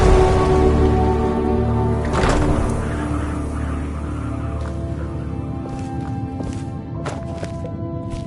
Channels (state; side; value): identical; both; correlation 1.00